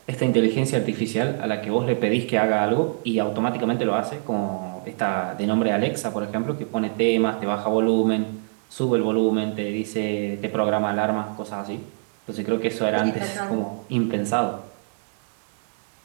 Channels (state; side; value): silent; left; 62 dB below the other